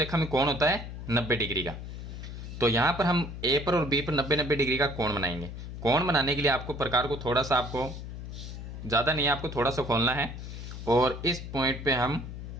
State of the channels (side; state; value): left; noise; hum, 9 dB below the sound